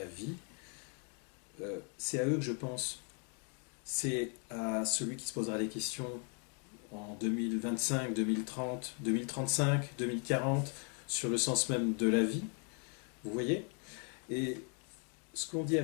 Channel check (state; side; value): quieter; right; 39.7 dB